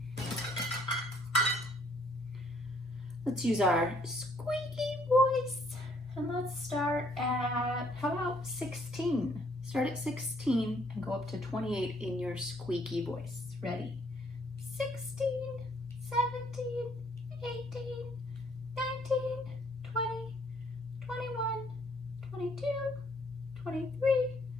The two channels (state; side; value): normal; both; correlation 0.64